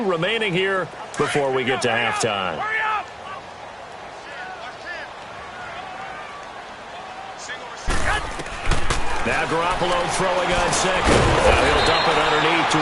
remaining here before we get to halftime. Now Garoppolo throwing on 2nd. Now he'll dump it underneath to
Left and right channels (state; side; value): identical; both; correlation 1.00